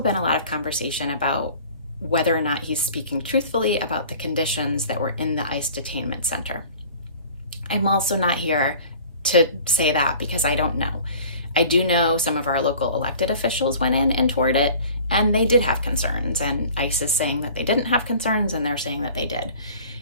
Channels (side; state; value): both; inverted; correlation -0.46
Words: a lot of conversation about whether or not he's speaking truthfully about the conditions that were in the ICE detainment center. I'm also not here to say that, because I don't know. I do know some of our local elected officials went in and toured it, and they did have concerns, and ICE is saying that they didn't have concerns, and they're saying that they did.